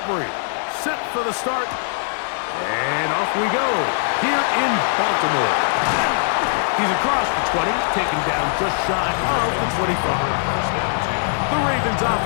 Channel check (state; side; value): silent; right; 58 dB below the other